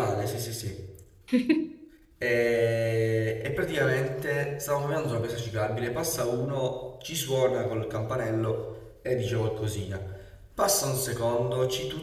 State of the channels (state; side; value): identical; both; correlation 1.00